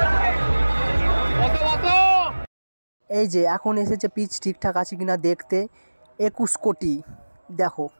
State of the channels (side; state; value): both; inverted; correlation -1.00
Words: এই যে এখন এসেছে পিচ ঠিকঠাক আছে কিনা দেখতে, 21 কোটি। দেখো